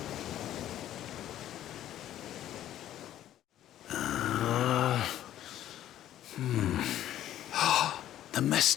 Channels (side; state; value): right; quieter; 12.3 dB